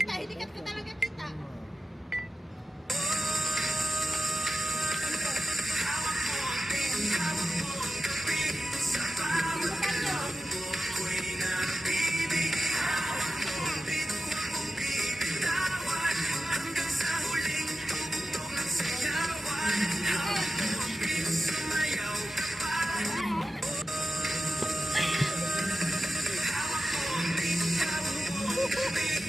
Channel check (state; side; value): normal; both; correlation 0.93